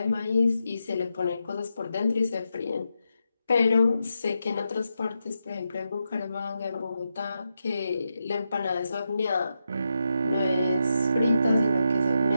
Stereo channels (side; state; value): both; inverted; correlation -0.86